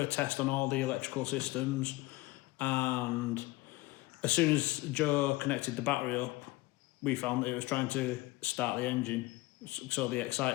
test on all the electrical systems, and as soon as Joe connected the battery up, we found that it was trying to start the engine. So the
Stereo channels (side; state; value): right; quieter; 20.3 dB